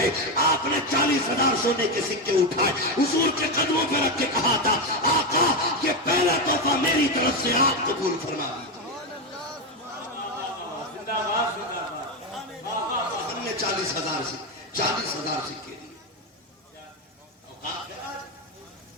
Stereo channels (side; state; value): both; normal; correlation 0.10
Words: आपने 40,000 सोने के सिक्के उठाए, हुजूर के कदमों पर रख के कहा था, आका ये पहला तोहफा मेरी तरफ से आप कबूल फरमा लीजिए। हमने 40,000 सिक्के दिए।